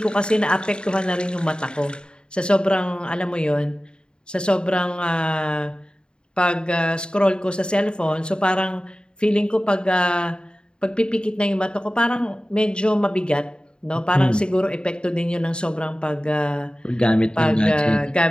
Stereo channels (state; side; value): late; right; 0.050 ms